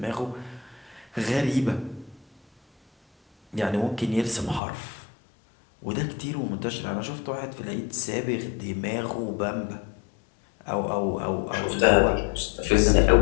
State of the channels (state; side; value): drops out; right; at 4.6 s